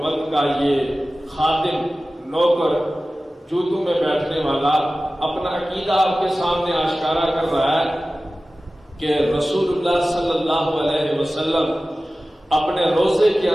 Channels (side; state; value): both; normal; correlation 0.96